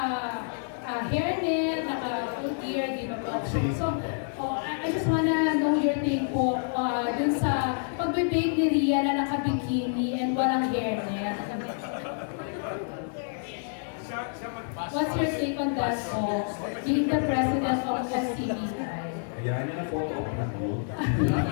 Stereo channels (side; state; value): right; silent; digital silence